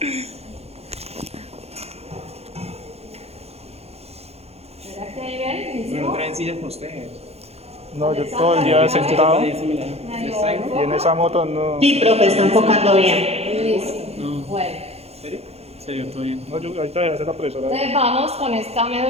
¿Será que ahí ven? No traen sillas para ustedes. No, yo todo el día sentado y en esa moto no. Sí, profe, está enfocando bien. Listo. Bueno. ¿Serio? Serio, todo bien. No, yo ahorita voy a hacer la profesora. Entonces vamos con esta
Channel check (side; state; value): left; late; 0.30 ms